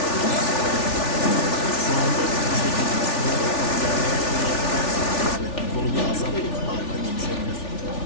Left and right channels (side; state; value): right; late; 3.4 ms